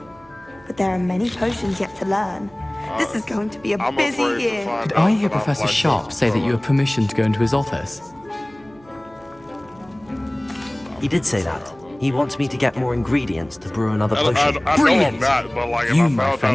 But there are many potions yet to learn. This is going to be a I'm busy afraid to year. find Did out I hear that I'm Professor like Sharp this, say that so- you have permission to go into his office? He did say that. He wants me to get more ingredients to brew another I potion. know I'm Brilliant! not, but like, if You, I my found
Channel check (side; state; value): right; noise; hum, 27 dB below the sound